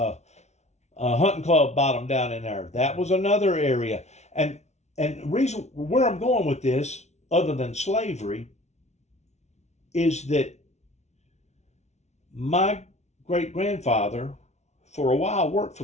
club bottom down in there. That was another area. And the reason where I'm going with this, other than slavery, is that my great-grandfather, for a while, worked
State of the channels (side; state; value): right; late; 0.32 ms